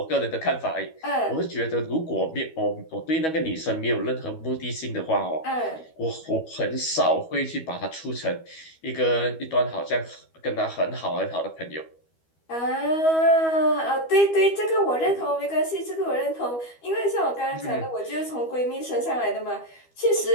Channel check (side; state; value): right; late; 12 ms